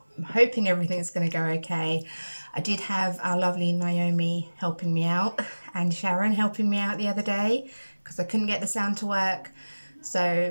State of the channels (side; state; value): both; inverted; correlation -1.00